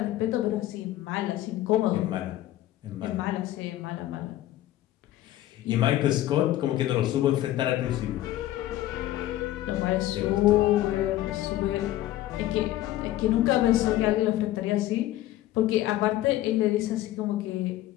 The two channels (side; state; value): right; quieter; 14.5 dB